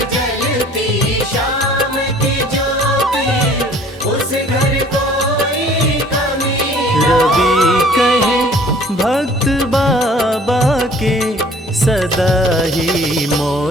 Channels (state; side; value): normal; both; correlation 0.53